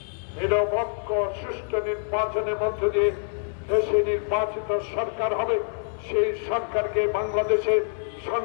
নিরপেক্ষ সুষ্ঠু নির্বাচনের মধ্য দিয়ে দেশে নির্বাচিত সরকার হবে। সেই সরকারকে বাংলাদেশের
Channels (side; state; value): right; silent; 61 dB below the other